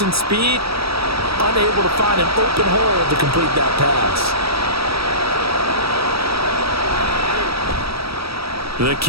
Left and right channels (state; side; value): late; left; 0.76 ms